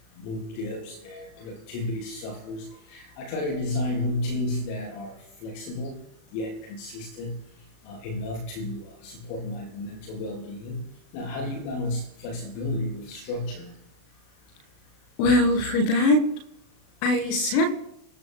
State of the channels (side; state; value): right; late; 36 ms